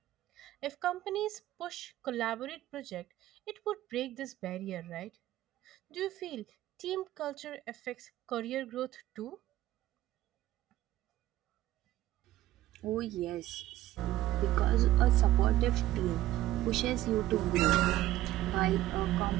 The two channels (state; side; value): quieter; left; 14.7 dB